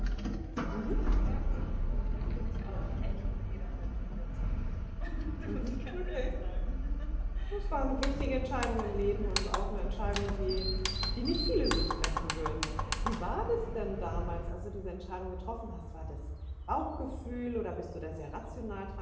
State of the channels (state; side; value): identical; both; correlation 1.00